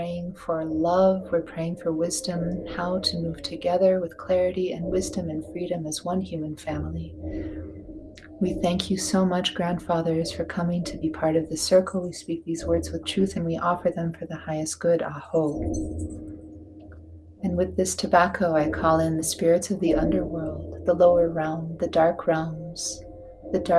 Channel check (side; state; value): both; identical; correlation 1.00